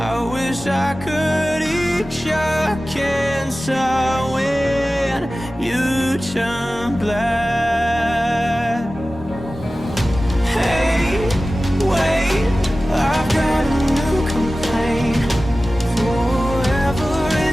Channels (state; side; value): normal; both; correlation 0.96